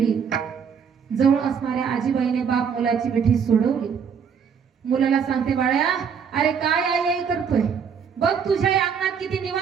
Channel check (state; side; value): quieter; left; 6.9 dB